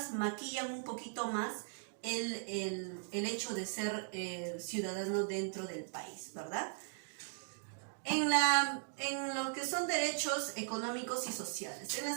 maquillan un poquito más el hecho de ser ciudadano dentro del país, ¿verdad? En lo que son derechos económicos y sociales, en la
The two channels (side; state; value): left; silent; digital silence